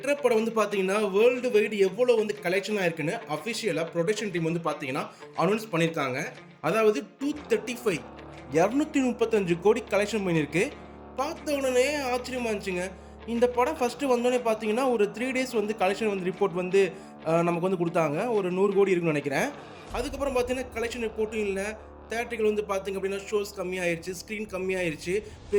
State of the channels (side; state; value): both; identical; correlation 1.00